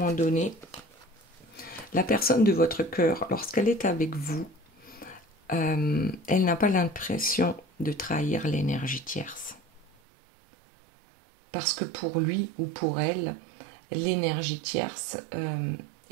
donné, la personne de votre cœur, lorsqu'elle est avec vous, elle n'a pas l'impression de trahir l'énergie tierce. Parce que pour lui ou pour elle, l'énergie tierce,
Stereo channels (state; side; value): drops out; left; at 9.9 s